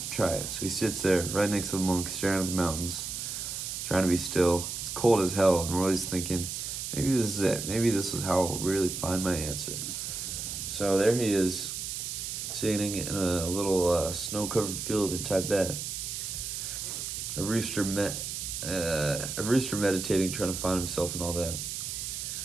to try it. So he sits there right next to the monk, staring at the mountains, trying to be still. It's cold as hell, and Roy's thinking, maybe this is it. Maybe this is how I'll really find my answer. So there he is, sitting in a little snow-covered field in Tibet. A rooster meditating, trying to find himself and all that.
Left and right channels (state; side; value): noise; right; hiss, 5 dB below the sound